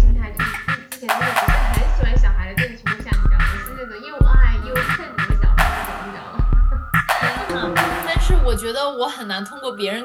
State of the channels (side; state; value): both; identical; correlation 1.00